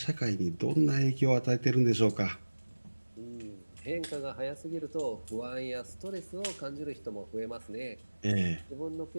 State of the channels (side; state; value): both; inverted; correlation -1.00